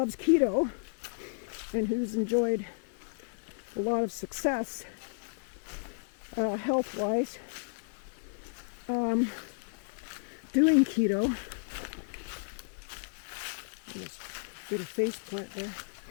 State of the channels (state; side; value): silent; right; digital silence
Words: keto and who's enjoyed a lot of success health-wise doing keto, just did a face plant there,